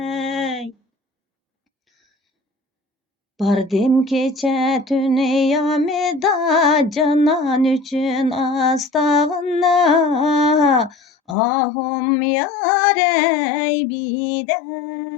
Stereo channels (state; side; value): drops out; right; at 11.4 s